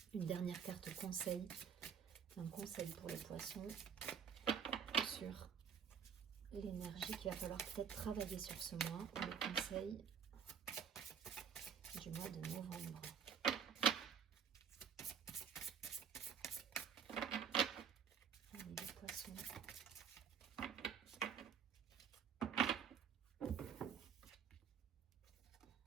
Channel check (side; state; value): left; quieter; 7.5 dB